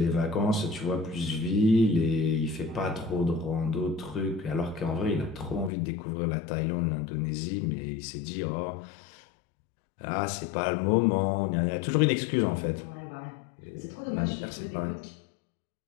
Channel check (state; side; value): drops out; right; at 5.7 s